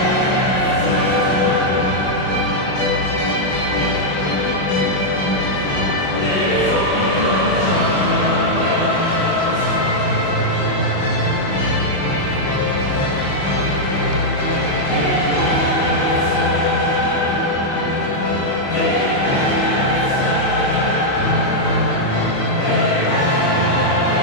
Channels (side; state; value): right; late; 22 ms